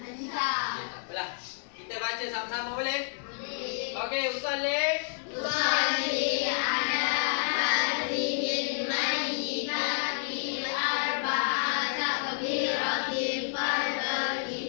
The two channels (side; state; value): right; silent; digital silence